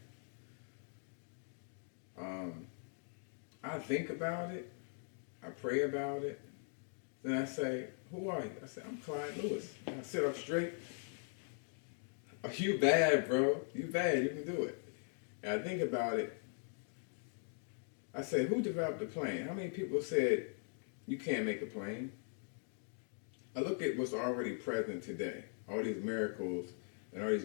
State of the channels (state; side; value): silent; right; 51 dB below the other